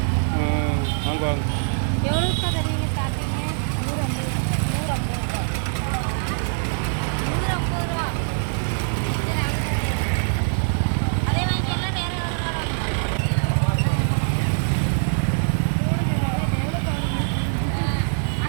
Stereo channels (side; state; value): left; silent; digital silence